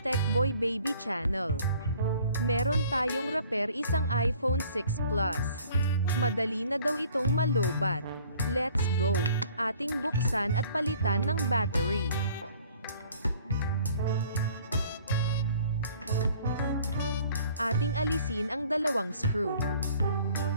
TECHBOY BABY channel. Meron tayong repair isang iPhone 6 Plus. Madali na daw itong malobat. Let's go! Ating buksan at palitan ng battery. Ating alisin ang dalawang screw.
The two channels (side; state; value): both; inverted; correlation -0.54